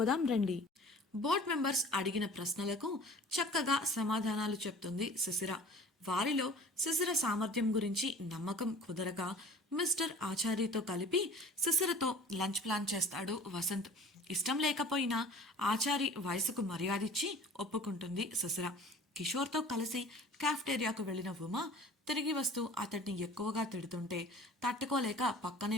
రండి. బోర్డ్ మెంబర్స్ అడిగిన ప్రశ్నలకు చక్కగా సమాధానాలు చెప్తుంది శిశిర. వారిలో శిశిర సామర్థ్యం గురించి నమ్మకం కుదరక మిస్టర్ ఆచార్యతో కలిపి శిశిరతో లంచ్ ప్లాన్ చేస్తాడు వసంత్. ఇష్టం లేకపోయినా ఆచారి వయసుకు మర్యాదిచ్చి ఒప్పుకుంటుంది శిశిర. కిషోర్తో కలిసి కాఫ్టేరియాకు వెళ్లిన ఉమా తిరిగి వస్తూ అతడిని ఎక్కువగా తిడుతుంటే తట్టుకోలేక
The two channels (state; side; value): normal; both; correlation 0.45